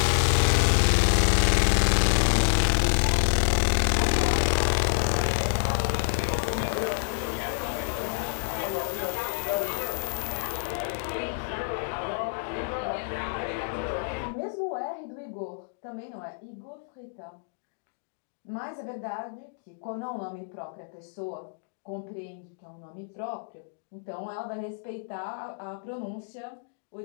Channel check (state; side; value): silent; right; digital silence